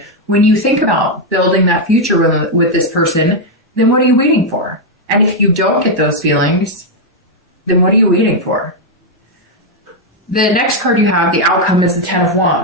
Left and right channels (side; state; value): both; normal; correlation 0.00